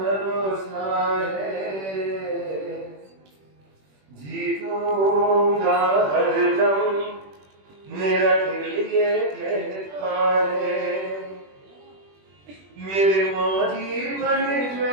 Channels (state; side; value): late; left; 21 ms